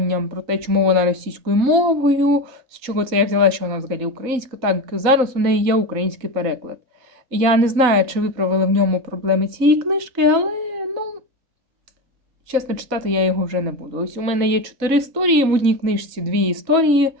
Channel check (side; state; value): left; late; 4.1 ms